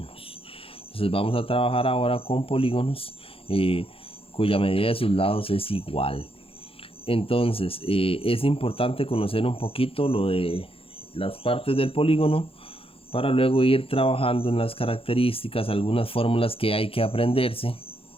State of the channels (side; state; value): right; late; 0.27 ms